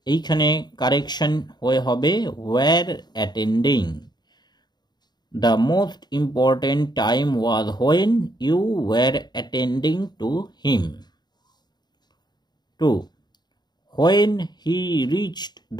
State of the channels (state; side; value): late; right; 0.20 ms